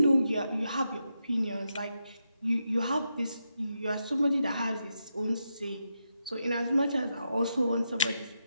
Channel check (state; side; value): inverted; both; correlation -0.85